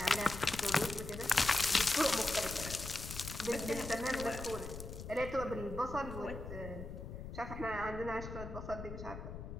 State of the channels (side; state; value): left; noise; rumble, 9 dB below the sound